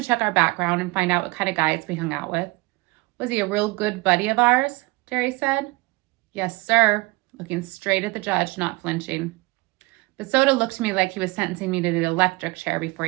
check our background and find out what kind of guys we hung out with. Was he a real good buddy of ours? Derry said. Yes, sir, looking straight at the judge, not flinching. But Soda looked to me like he was sentencing me to the electric chair before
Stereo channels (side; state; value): left; quieter; 23.8 dB